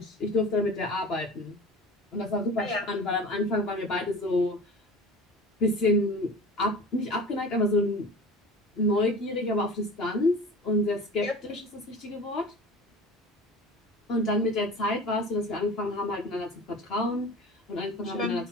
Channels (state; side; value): normal; both; correlation 0.38